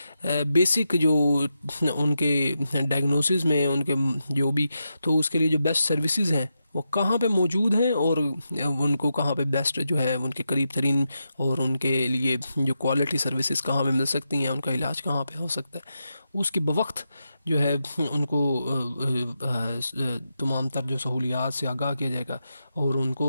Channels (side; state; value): both; inverted; correlation -0.87